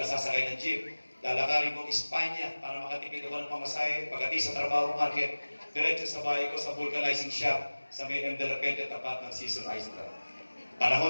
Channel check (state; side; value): inverted; both; correlation -1.00